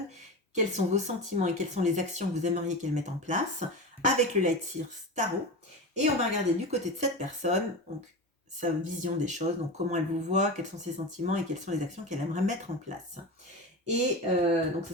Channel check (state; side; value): normal; both; correlation 0.25